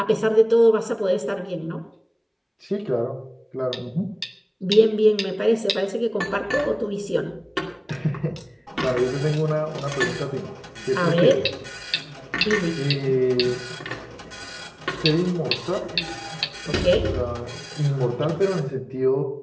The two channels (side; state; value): both; identical; correlation 1.00